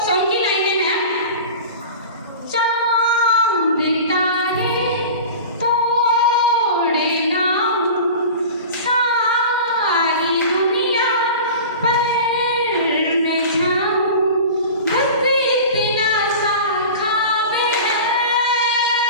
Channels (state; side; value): inverted; both; correlation -0.35